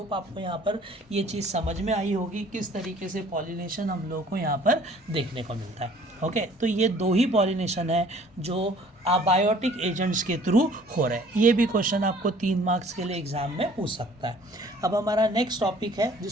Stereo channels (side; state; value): both; normal; correlation 0.54